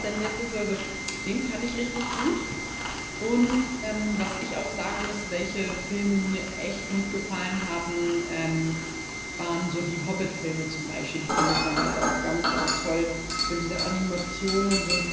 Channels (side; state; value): both; identical; correlation 1.00